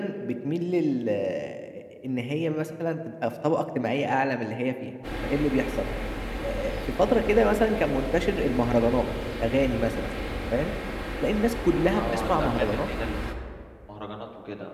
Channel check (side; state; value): both; identical; correlation 1.00